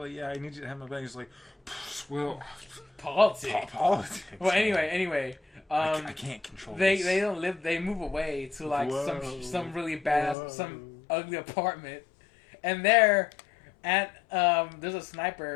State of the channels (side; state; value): right; drops out; at 10.4 s